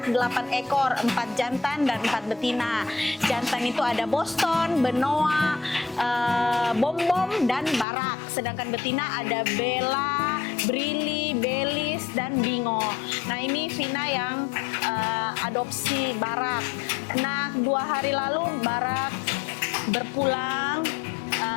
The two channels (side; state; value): right; drops out; at 7.9 s